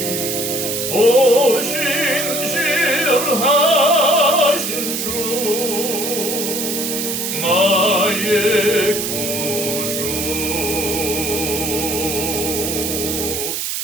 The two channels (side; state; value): right; noise; hiss, 2 dB below the sound